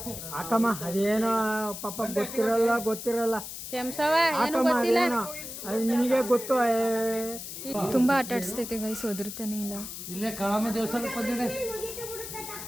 ಹಾಕಮ್ಮ, ಅದೇನೋ ಪಾಪ ಗೊತ್ತಿರಲ್ಲ ಕ್ಷಮಿಸವ, ಏನು ಹಾಕಮ್ಮ, ಗೊತ್ತಿಲ್ಲ. ಅದೇನೋ ಅದು ನಿನಗೆ ಗೊತ್ತು. ತುಂಬಾ ಆಟ ಆಡಿಸ್ತೈತೆ ಗೈಸ್, ಒದರ್ತಾನೆ ಇಲ್ಲ. ಇಲ್ಲೇ ಕಾಳಮ್ಮ ದೇವಸ್ಥಾನಕ್ಕೆ ಬಂದಿದೆ.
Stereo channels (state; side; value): noise; left; hiss, 9 dB below the sound